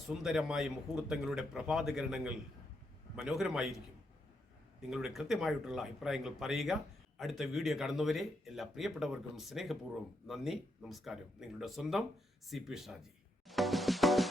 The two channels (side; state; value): both; normal; correlation 0.80